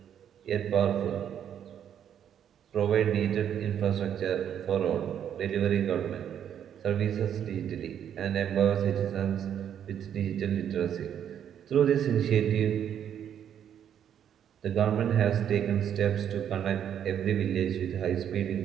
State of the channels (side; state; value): left; quieter; 9.3 dB